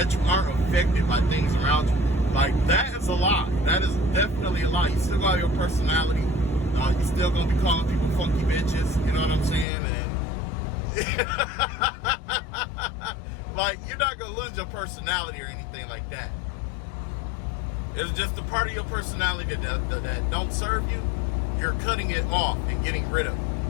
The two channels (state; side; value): drops out; right; at 9.7 s